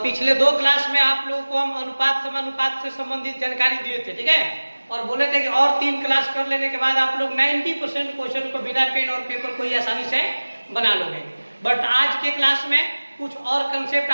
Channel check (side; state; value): both; inverted; correlation -1.00